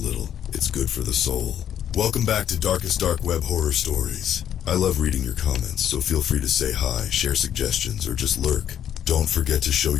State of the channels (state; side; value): quieter; right; 10.0 dB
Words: it's good for the soul. Welcome back to Darkest Dark Web Horror Stories. I love reading your comments, so feel free to say hi, share suggestions, or just lurk. Don't forget to show